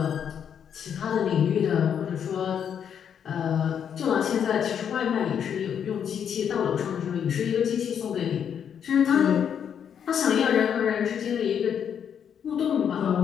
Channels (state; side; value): quieter; right; 8.2 dB